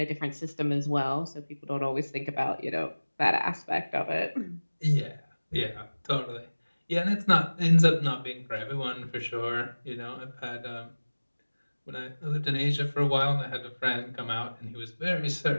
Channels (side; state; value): both; inverted; correlation -1.00